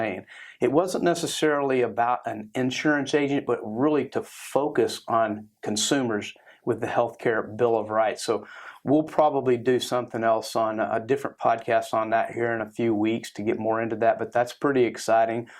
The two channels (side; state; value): both; identical; correlation 1.00